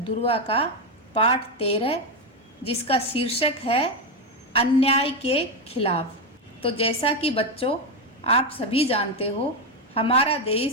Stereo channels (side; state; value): both; normal; correlation 0.08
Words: दुर्वा का पाठ 13, जिसका शीर्षक है अन्याय के खिलाफ। तो जैसा कि बच्चों आप सभी जानते हो, हमारा